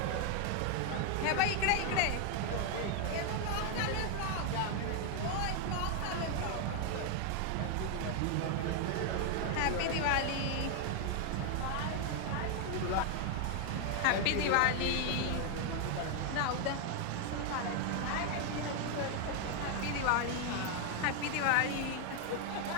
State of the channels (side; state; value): both; different; correlation 0.01